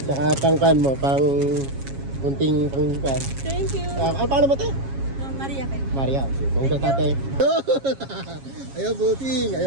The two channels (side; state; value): left; late; 7.3 ms